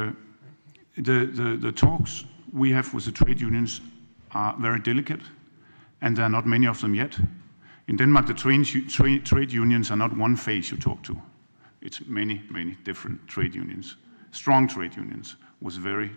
talks we have with the trade unions are very delicate, and there are not many of them yet. In Denmark, the trade unions are not one face you talk to. It's many, many different trade unions, strong trade unions with very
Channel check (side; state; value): both; inverted; correlation -1.00